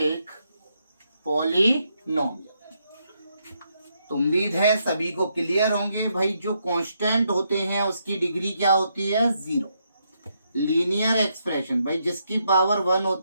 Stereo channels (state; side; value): inverted; both; correlation -0.78